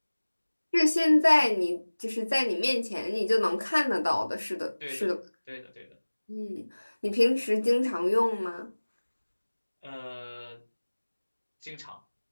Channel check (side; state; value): both; inverted; correlation -1.00